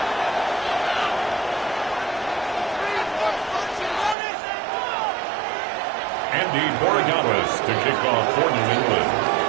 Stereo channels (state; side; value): drops out; left; at 4.2 s